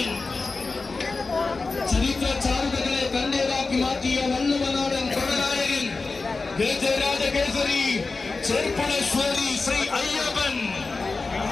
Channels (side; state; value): right; quieter; 3.9 dB